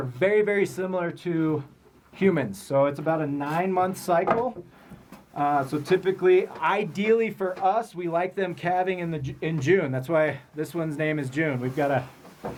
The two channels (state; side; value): identical; both; correlation 1.00